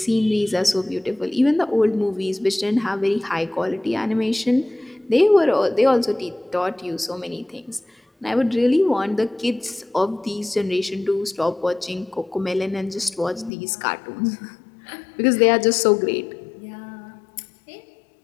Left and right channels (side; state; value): right; drops out; at 13.5 s